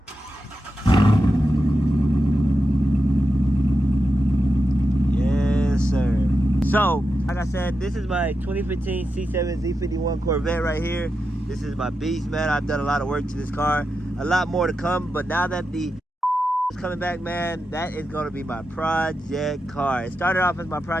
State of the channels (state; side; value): normal; both; correlation 0.88